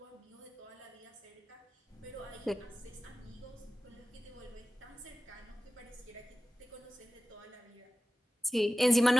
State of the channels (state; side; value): normal; both; correlation 0.95